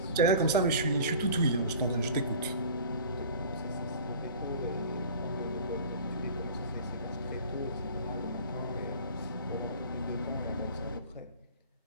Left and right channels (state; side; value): inverted; both; correlation -0.43